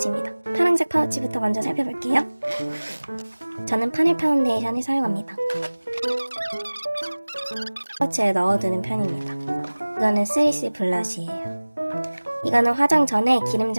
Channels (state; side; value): inverted; both; correlation -1.00